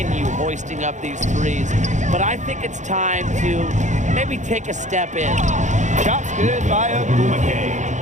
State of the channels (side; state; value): left; late; 0.35 ms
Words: hoisting up these threes. But I think it's time to maybe take a step in. Shot's good by